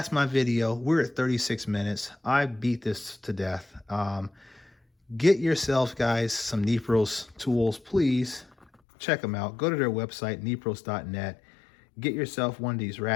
my video. We're at 36 minutes. I beat this to death. Get yourself, guys, some Nepros tools, please. Check them out. Go to their website, nepros.net. Get yourself one of these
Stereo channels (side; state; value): right; drops out; at 8.7 s